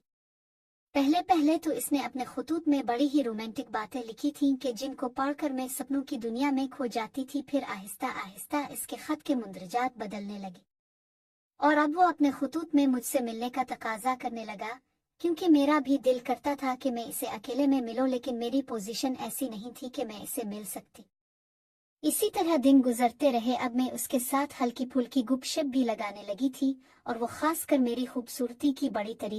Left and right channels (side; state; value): both; identical; correlation 1.00